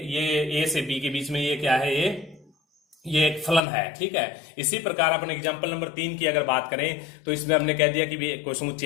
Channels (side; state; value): right; drops out; at 3.6 s